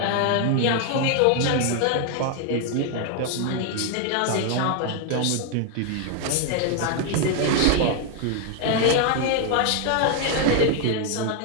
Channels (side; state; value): both; different; correlation 0.00